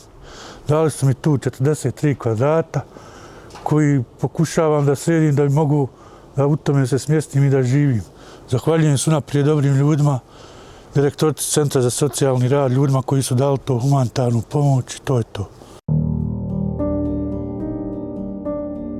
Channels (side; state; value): both; identical; correlation 1.00